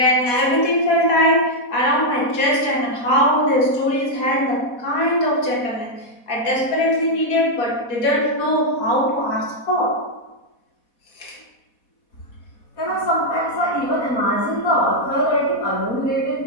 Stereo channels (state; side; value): late; right; 4.1 ms